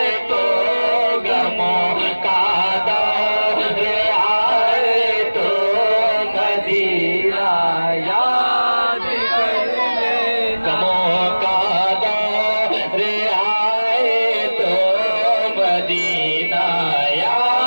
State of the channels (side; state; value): both; inverted; correlation -1.00